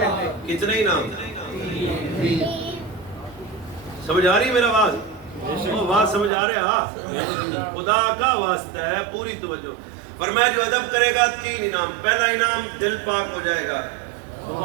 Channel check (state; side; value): drops out; left; at 6.3 s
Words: کتنے انعام سمجھ آ رہی میرا آواز بات سمجھ آ رہا خدا کا واسطہ ہے پوری توجہ فرمایا جو ادب کرے گا 3 انعام پہلا انعام دل پاک ہو جائے گا